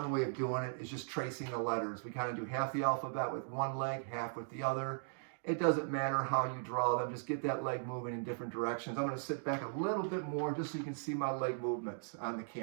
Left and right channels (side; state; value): left; silent; digital silence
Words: way of doing it is just tracing the letters. We kind of do half the alphabet with one leg, half with the other. It doesn't matter how you draw them. Just get that leg moving in different directions. I'm going to sit back a little bit more just so you can see my leg movements on the